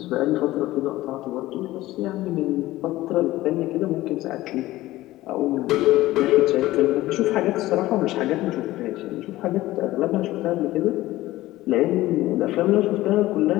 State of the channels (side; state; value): right; quieter; 16.9 dB